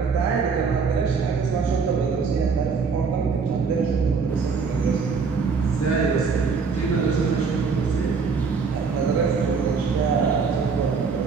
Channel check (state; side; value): quieter; left; 5.2 dB